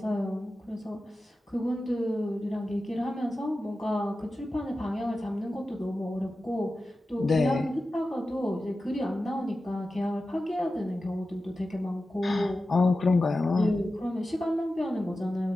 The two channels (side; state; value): both; normal; correlation 0.94